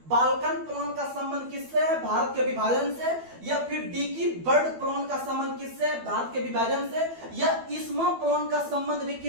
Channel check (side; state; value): left; late; 12 ms